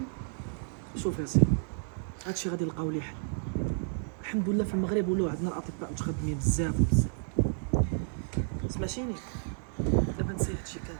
شوف يا سيدي، هادشي غادي نلقاو ليه حل. الحمد لله في المغرب ولاو عندنا الاطباء متخدمين بزاف وبزاف. سمعتيني؟ دابا نسي هادشي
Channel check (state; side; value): silent; left; 57 dB below the other